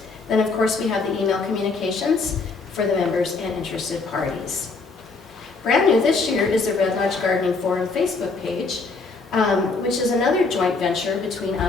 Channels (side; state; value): right; quieter; 4.1 dB